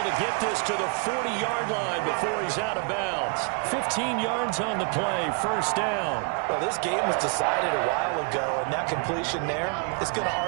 to get this to the 40-yard line before he's out of bounds. 15 yards on the play, first down. Well, this game was decided a while ago, and that completion there is going to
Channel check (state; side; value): quieter; left; 37.8 dB